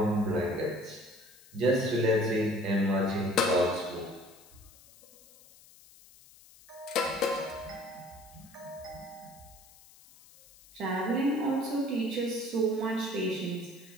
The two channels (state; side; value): noise; left; hiss, 24 dB below the sound